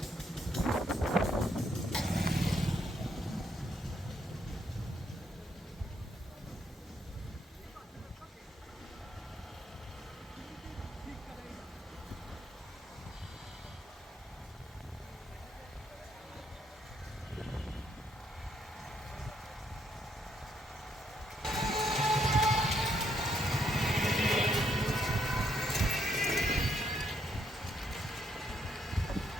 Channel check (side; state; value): both; normal; correlation 0.74